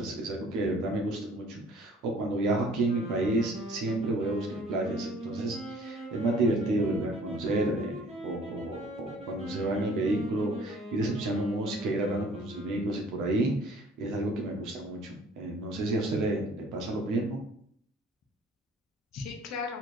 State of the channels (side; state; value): both; normal; correlation 0.54